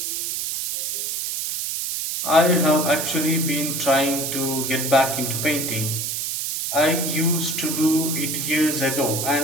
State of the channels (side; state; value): right; noise; hiss, 2 dB below the sound